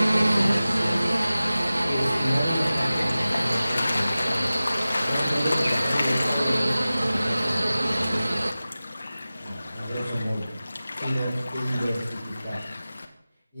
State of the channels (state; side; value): inverted; both; correlation -0.96